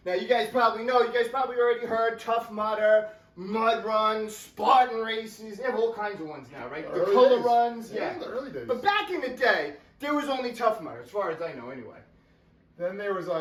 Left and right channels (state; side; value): identical; both; correlation 1.00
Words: Now, you guys probably know, you guys probably already heard Tough Mudder, mud runs, Spartan races. They have all kinds of ones now, right? The color days. runs. Yeah, the early days. But back in the day, there was only Tough Mudder, as far as I know, anyway. Then there was,